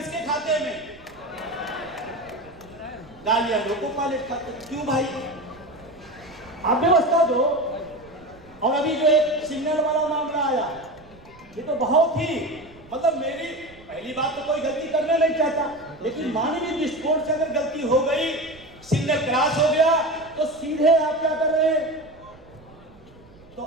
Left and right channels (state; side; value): noise; right; rumble, 24 dB below the sound